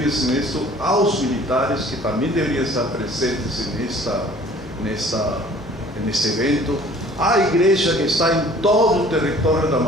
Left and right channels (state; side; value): normal; both; correlation 0.51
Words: nisto aos militares que também deveriam estar presentes neste evento, a igreja que está em todo o território da